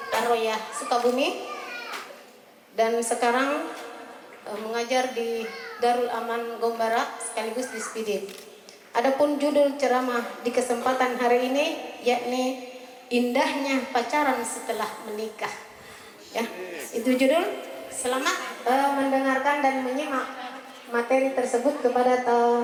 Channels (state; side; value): identical; both; correlation 1.00